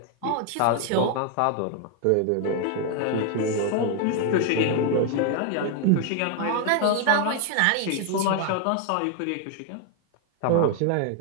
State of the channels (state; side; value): different; both; correlation 0.00